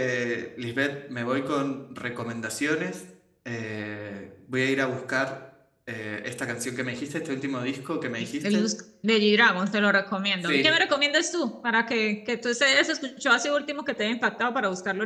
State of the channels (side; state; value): both; identical; correlation 1.00